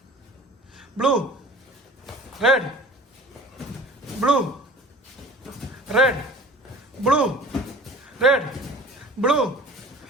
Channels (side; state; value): both; normal; correlation 0.44